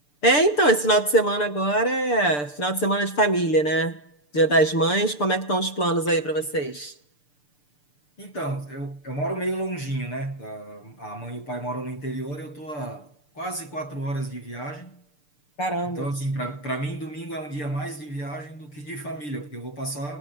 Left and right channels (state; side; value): late; right; 6.8 ms